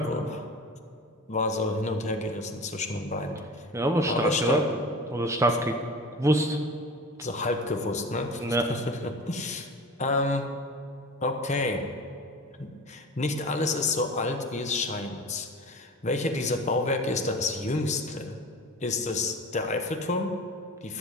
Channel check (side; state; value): both; normal; correlation 0.35